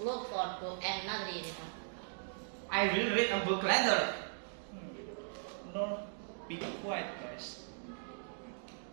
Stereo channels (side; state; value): left; silent; digital silence